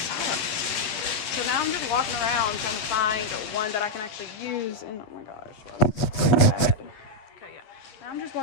So now I'm just walking around trying to find one that I can actually use, and oh my gosh, bad. Okay, yeah. Now I'm just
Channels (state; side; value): late; right; 9.3 ms